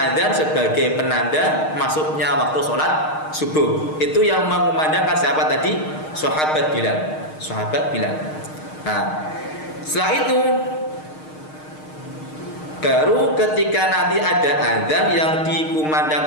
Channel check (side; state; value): right; late; 6.5 ms